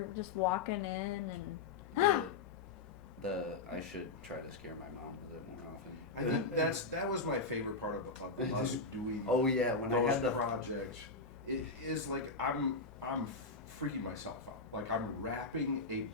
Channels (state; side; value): quieter; right; 3.9 dB